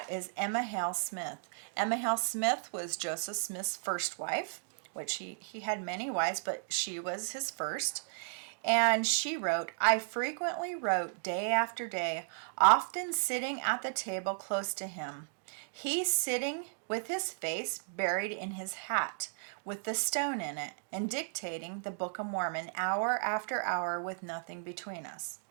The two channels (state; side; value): silent; left; digital silence